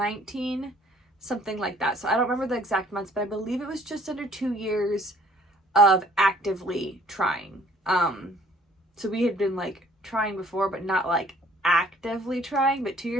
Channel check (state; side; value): normal; both; correlation 0.58